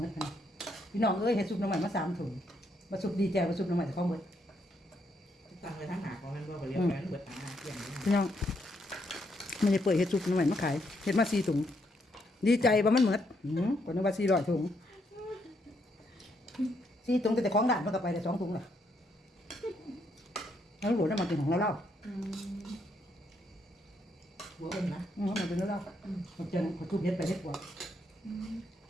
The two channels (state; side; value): normal; both; correlation 0.75